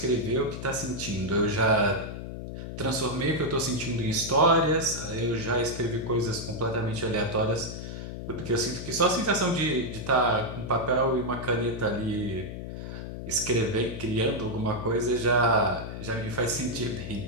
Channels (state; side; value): noise; left; hum, 8 dB below the sound